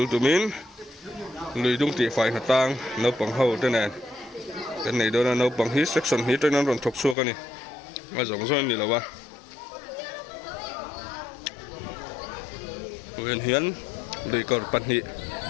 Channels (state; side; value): drops out; right; at 7.2 s